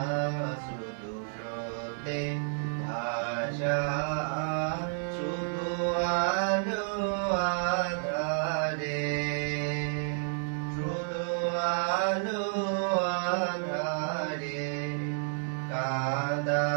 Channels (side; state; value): left; silent; digital silence